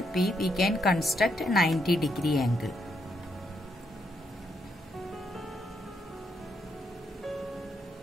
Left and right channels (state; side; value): normal; both; correlation 0.78